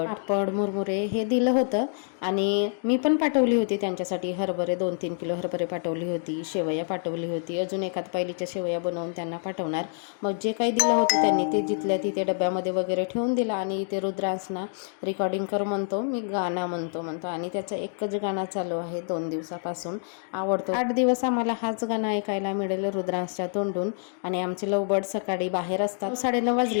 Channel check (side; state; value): right; silent; digital silence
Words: पापड, मुरमुरे हे दिलं होतं। आणि मी पण पाठवली होती त्यांच्यासाठी हरभरे, 2-3 किलो हरभरे पाठवली होती, शेवया पाठवली होती, अजून एखाद पायलीच्या शेवया बनवून त्यांना पाठवणार। मग जे काही दिलं होतं त्यांनी ते जिथल्या तिथे डब्यामध्ये वगैरे ठेवून दिला। आणि इथे रुद्रांसना रेकॉर्डिंग कर म्हणतो, मी गाणं म्हणतो आणि त्याचं एकच गाणं चालू आहे 2 दिवसापासून, आवडतो। 8 दिवस आम्हाला हाच गाणं ऐकायला मिळेल रुद्रांसच्या तोंडून। आणि आमचे लवबर्ड सकाळी बाहेर असतात, 9:30